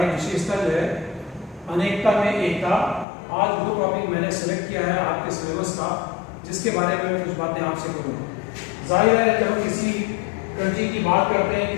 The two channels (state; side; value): drops out; right; at 3.1 s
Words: विशेषता जो है अनेकता में एकता। आज वो टॉपिक मैंने सेलेक्ट किया है आपके सिलेबस का, जिसके बारे में मैं कुछ बातें आपसे करूँगा। जाहिर है जब हम किसी कंट्री की बात करते हैं,